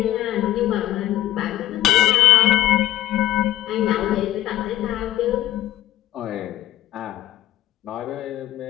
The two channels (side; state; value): right; quieter; 14.3 dB